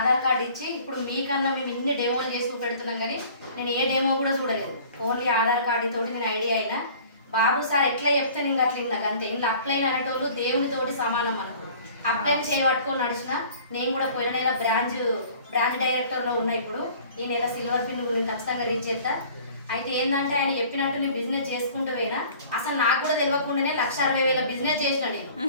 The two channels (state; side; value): inverted; both; correlation -0.48